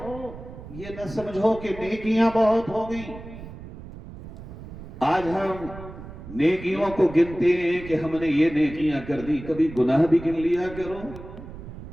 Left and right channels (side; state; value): right; noise; rumble, 14 dB below the sound